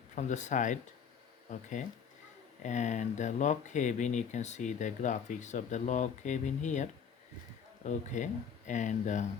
from the side. Okay, and the log cabin, you can see the graphics of the log cabin here. Okay, and the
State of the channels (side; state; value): right; quieter; 7.0 dB